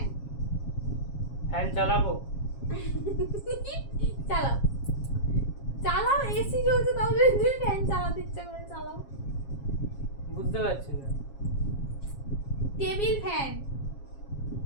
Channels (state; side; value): late; right; 7.3 ms